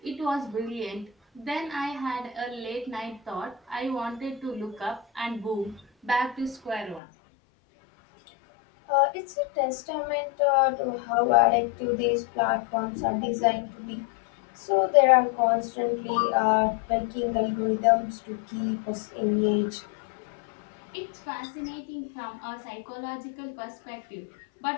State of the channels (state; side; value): drops out; right; at 7.0 s